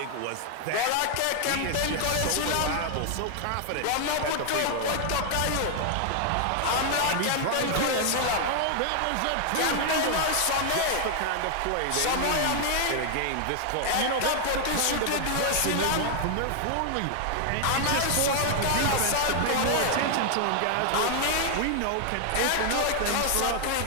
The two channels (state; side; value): different; both; correlation 0.00